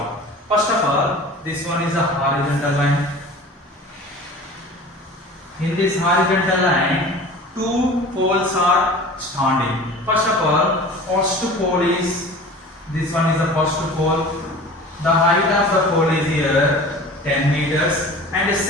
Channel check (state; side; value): normal; both; correlation 0.40